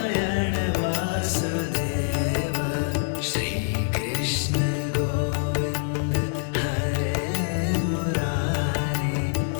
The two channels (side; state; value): right; silent; digital silence